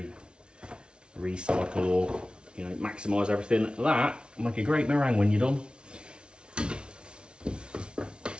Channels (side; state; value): left; late; 0.056 ms